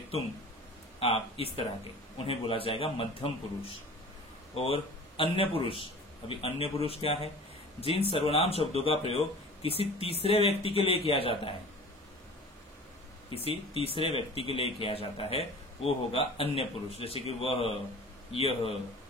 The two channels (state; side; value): normal; both; correlation 0.41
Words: तुम, आप, इस तरह के, उन्हें बोला जाएगा मध्यम पुरुष। और अन्य पुरुष, अभी अन्य पुरुष क्या है? जिन सर्वनाम शब्दों का प्रयोग किसी तीसरे व्यक्ति के लिए किया जाता है, किसी तीसरे व्यक्ति के लिए किया जाता है, वो होगा अन्य पुरुष। जैसे कि वह, यह।